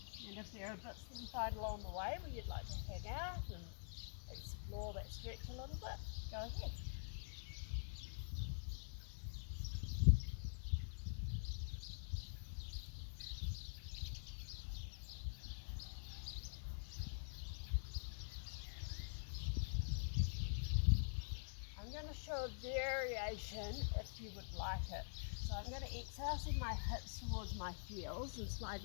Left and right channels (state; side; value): silent; right; digital silence